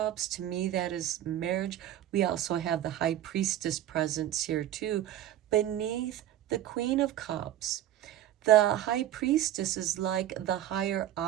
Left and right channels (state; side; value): quieter; left; 12.3 dB